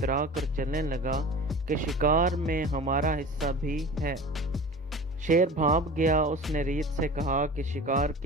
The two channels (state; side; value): normal; both; correlation 0.37